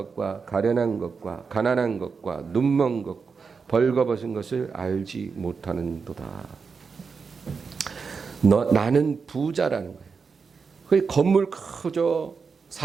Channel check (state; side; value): quieter; left; 5.3 dB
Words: 가련한 것과 가난한 것과 눈먼 것 벌거벗은 것을 알지 못하는도다. 나는 부자라는 거예요. 그 건물 크죠,